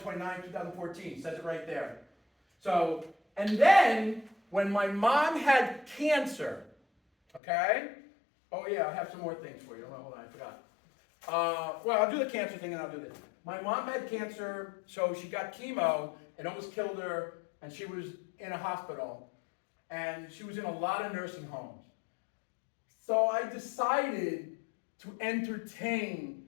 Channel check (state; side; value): drops out; right; at 7.4 s